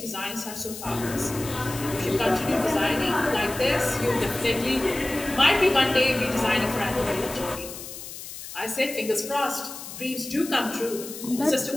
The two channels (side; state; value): left; noise; hiss, 11 dB below the sound